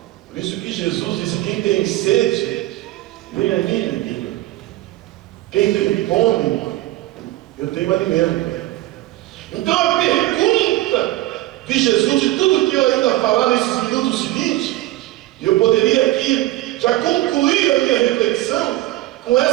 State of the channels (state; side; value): quieter; left; 16.8 dB